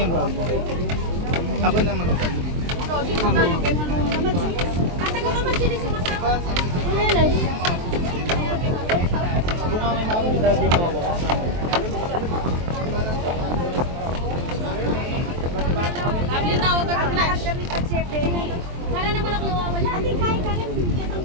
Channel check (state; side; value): late; left; 23 ms